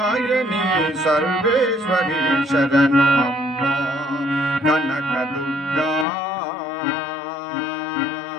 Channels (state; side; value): drops out; right; at 6.1 s